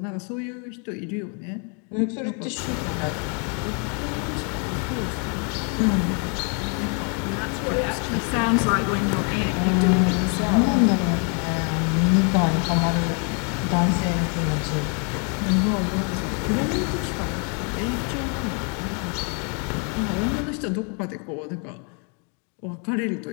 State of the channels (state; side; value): quieter; right; 38.4 dB